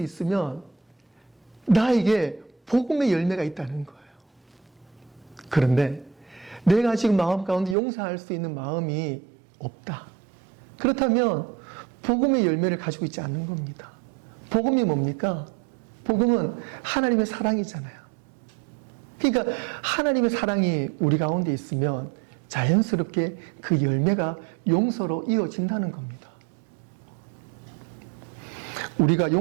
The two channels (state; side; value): drops out; left; at 7.8 s